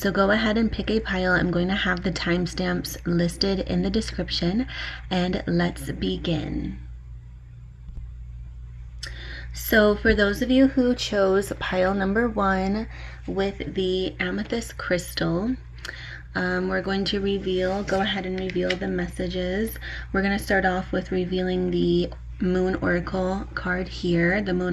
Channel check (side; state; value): both; identical; correlation 1.00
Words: go ahead and pick a pile. I'm going to have the timestamps listed in the description, and let's begin. So for those of you who chose pile number 1 with the amethyst crystal, we're going to go ahead and reveal the messages. We're going to start off with revealing the Moon Oracle card here, the